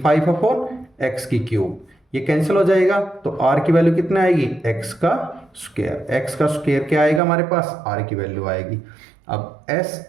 5 अपॉन x की क्यूब, ये कैंसिल हो जाएगा, तो r की वैल्यू कितना आएगी, x का स्क्वायर, x का स्क्वायर क्या आएगा हमारे पास, r की वैल्यू आएगी। अब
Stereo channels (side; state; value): left; drops out; at 7.2 s